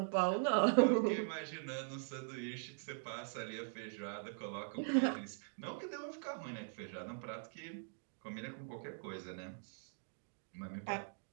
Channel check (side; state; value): left; silent; digital silence